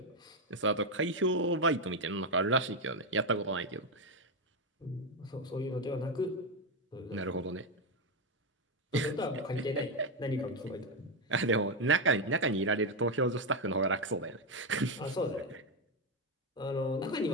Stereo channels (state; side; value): normal; both; correlation 0.07